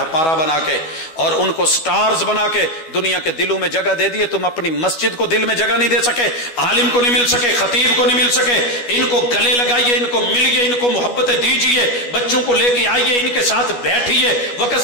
بنا کے، اور ان کو سٹارز بنا کے دنیا کے دلوں میں جگہ دے دیے۔ تم اپنی مسجد کو دل میں جگہ نہیں دے سکے، عالم کو نہیں مل سکے، خطیب کو نہیں مل سکے۔ ان کو گلے لگائیے، ان کو ملیے، ان کو محبتیں دیجیے، بچوں کو لے کے آئیے، ان کے ساتھ بیٹھیے، وقت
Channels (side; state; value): right; late; 12 ms